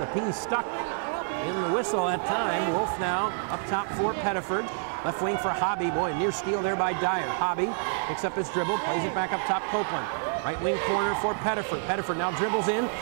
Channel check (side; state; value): left; silent; digital silence